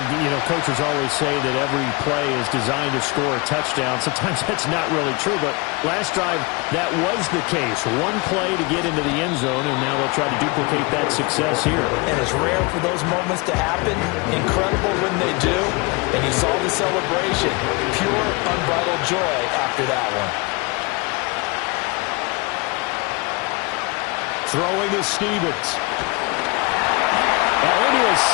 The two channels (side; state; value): right; quieter; 26.8 dB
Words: coaches always say that every play is designed to score a touchdown. Sometimes that's not really true, but last drive, that was the case. One play to get into the end zone, and now they'll try to duplicate that success here. And it's rare for those moments to happen. Incredible when they do. And you saw the celebration. Pure, unbridled joy after that one. Throwing is Stevens. Into a